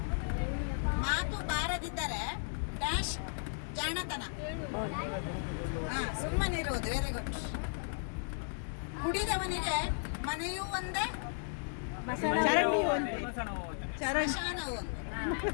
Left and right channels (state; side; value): silent; right; digital silence